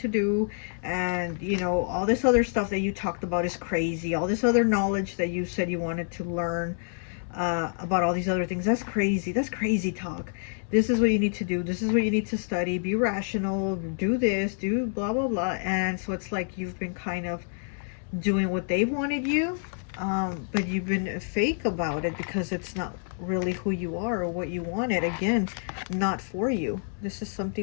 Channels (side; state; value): right; silent; 57 dB below the other